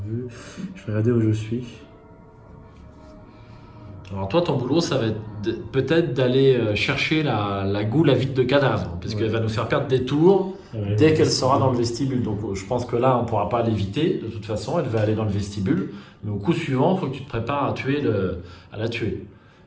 vue. Je vais regarder où je suis. Alors toi, ton boulot, ça va être peut-être d'aller chercher la goule à vide de cadavre, puisqu'elle Ouais. va nous faire perdre des tours Ouais, dès qu'elle sera dans le vestibule. Donc je pense que là, on ne pourra pas l'éviter. De toute façon, elle va aller dans le vestibule. Mais au coup suivant, il faut que tu te prépares à la tuer.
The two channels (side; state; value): both; identical; correlation 1.00